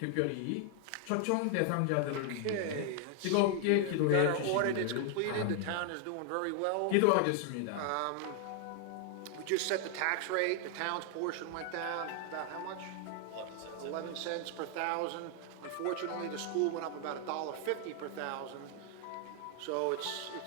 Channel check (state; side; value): different; both; correlation 0.00